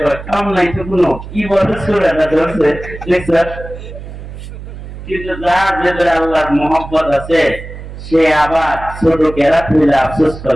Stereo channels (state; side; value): noise; right; hum, 12 dB below the sound